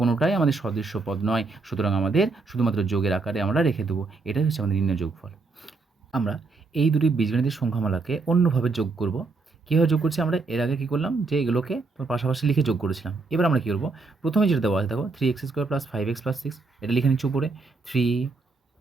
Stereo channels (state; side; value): quieter; left; 3.9 dB